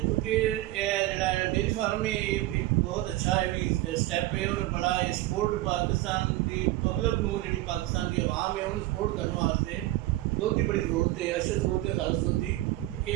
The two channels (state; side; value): quieter; left; 16.8 dB